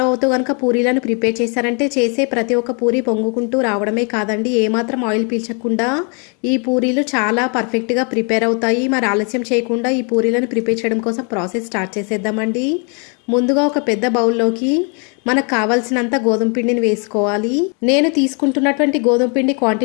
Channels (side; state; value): right; quieter; 36.6 dB